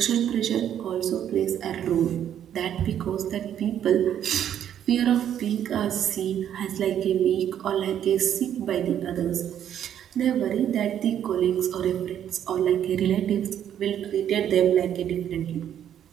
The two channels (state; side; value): quieter; left; 10.0 dB